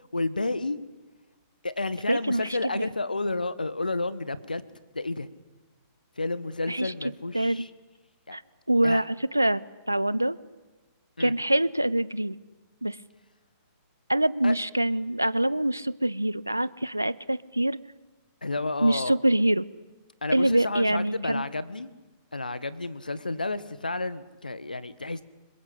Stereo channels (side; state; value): both; inverted; correlation -0.94